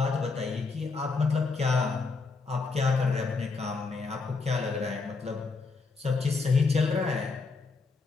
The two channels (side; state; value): right; quieter; 4.2 dB